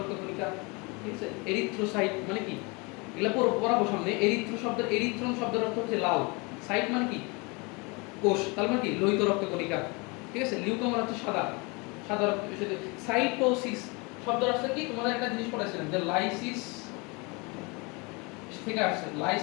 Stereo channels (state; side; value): quieter; right; 28.7 dB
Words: কণিকা, ঠিক আছে? এরিথ্রোসাইট মানে কি? এগুলা পড়াবো সামনে। এরিথ্রন শব্দের অর্থ হচ্ছে লাল। সাইট মানে কি? কোষ, তার মানে কি? লোহিত রক্ত কণিকা, ঠিক আছে? লিউকো মানে হচ্ছে সাদা, সাদা রক্ত। সাইটোসিস শব্দের অর্থ কি? তোমাদের একটা জিনিস পড়াইছিলাম যে লাইসিস থেকে আসছে।